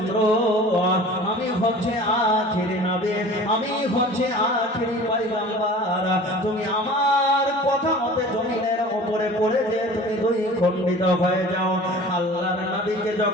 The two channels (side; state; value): both; normal; correlation 0.42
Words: আমি হচ্ছে আখেরি নবী, আমি হচ্ছে আখেরি পয়গম্বর, তুমি আমার কথা মতে জমিনের উপরে পড়ে যে তুমি দুই খণ্ডিত হয়ে যাও। আল্লাহর নবীকে